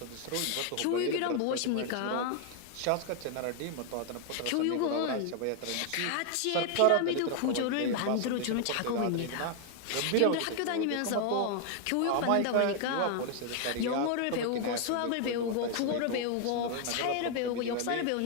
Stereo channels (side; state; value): both; different; correlation 0.00